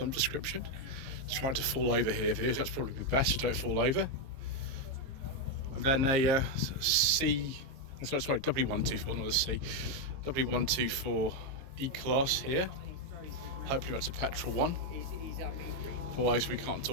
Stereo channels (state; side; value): late; left; 22 ms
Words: description. It's trying to fall over here, viewers. That's probably the best, so don't fall over. And then a W124, not a C, W124 E-Class here. Hopefully that's a petrol one. Otherwise we can't